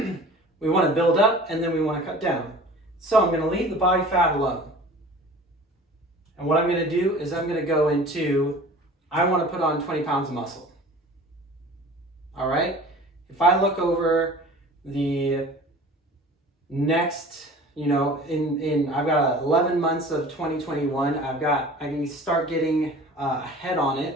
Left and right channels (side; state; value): both; normal; correlation 0.42